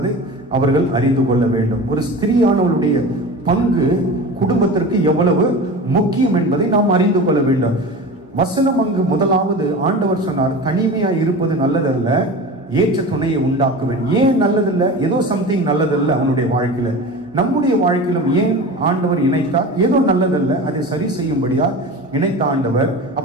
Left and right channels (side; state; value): both; normal; correlation 0.32